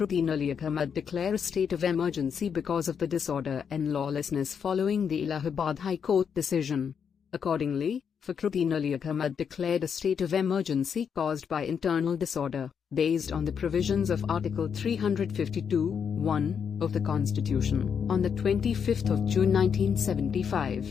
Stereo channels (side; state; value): right; quieter; 7.1 dB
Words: Ali Ahmed declare a state of emergency because of the disorder and lawlessness following the Allahabad High Court decision. Accordingly, Fakhruddin Ali Ahmed declared a state of emergency caused by internal disorder, based on the provisions of Article 352(1) of the Constitution, on the 25th of June